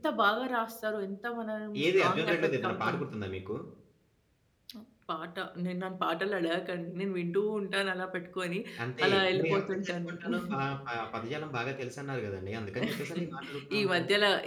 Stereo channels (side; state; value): both; identical; correlation 1.00